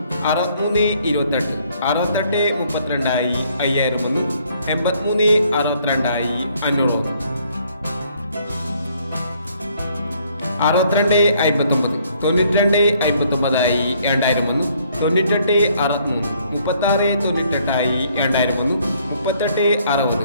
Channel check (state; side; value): inverted; both; correlation -0.65